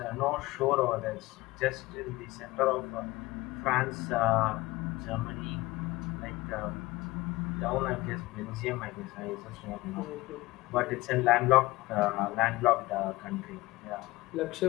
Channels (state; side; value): quieter; right; 20.0 dB